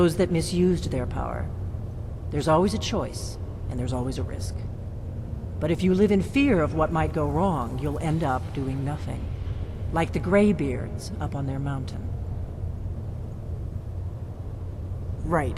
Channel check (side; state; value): both; identical; correlation 1.00